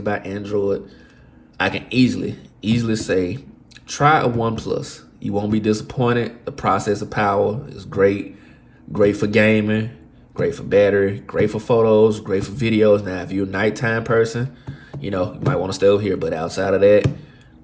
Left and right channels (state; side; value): identical; both; correlation 1.00